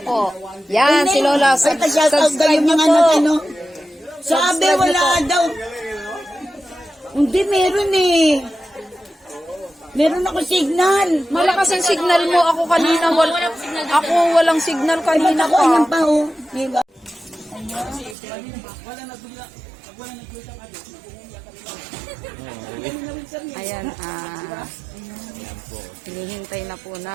po. Yan si Lola. Ay, pa-shoutout daw yung mga ano. Sabi, Subscribe wala niyo po. daw. Hindi, meron eh. Meron ako signal. Malakas ang signal mo. Ako kanina, ako walang signal kanina Ako, ayan pa. pa oh. Ayan, hinihintay na po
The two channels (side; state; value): left; drops out; at 18.2 s